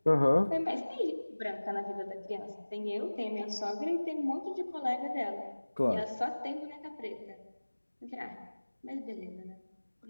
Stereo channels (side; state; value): both; inverted; correlation -1.00